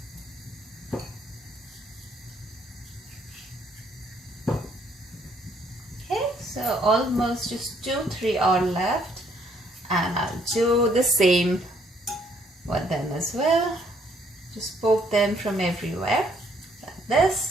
So almost just 2-3 are left, and I'll do the same with them as well. Just poke them from everywhere like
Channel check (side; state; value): both; normal; correlation 0.67